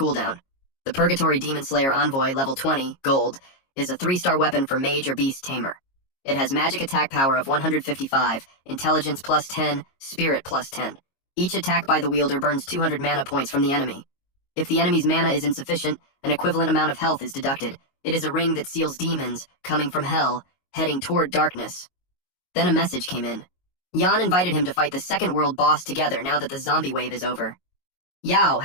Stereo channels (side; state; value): right; late; 22 ms